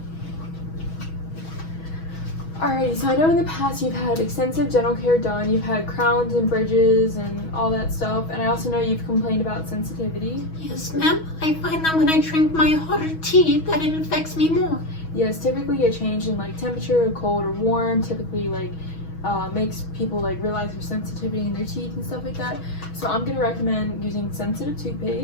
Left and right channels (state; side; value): late; right; 6.2 ms